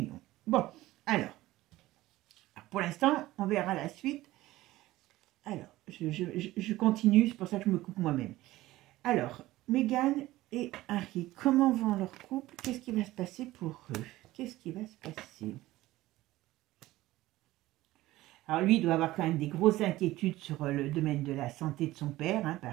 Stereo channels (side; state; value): left; quieter; 17.0 dB